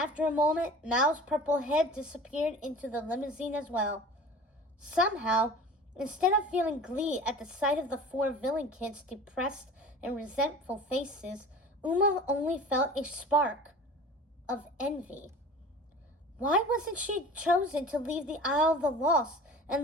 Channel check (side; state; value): both; normal; correlation 0.39